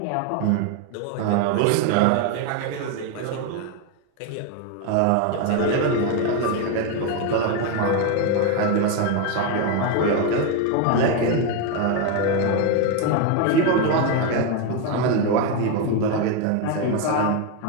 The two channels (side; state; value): both; different; correlation 0.02